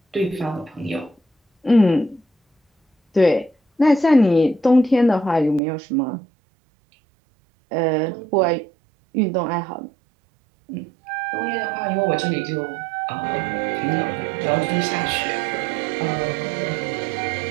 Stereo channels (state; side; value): drops out; left; at 5.6 s